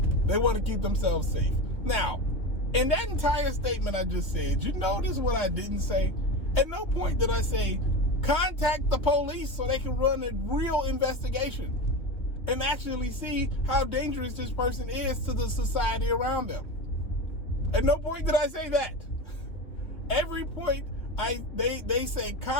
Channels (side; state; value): right; late; 2.9 ms